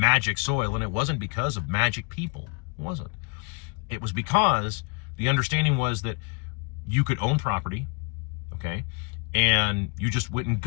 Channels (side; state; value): right; quieter; 33.8 dB